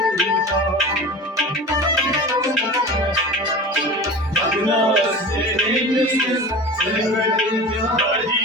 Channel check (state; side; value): normal; both; correlation 0.34